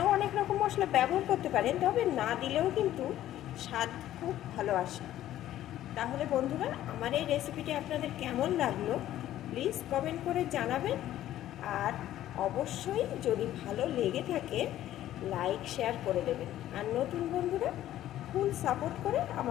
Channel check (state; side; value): quieter; right; 13.1 dB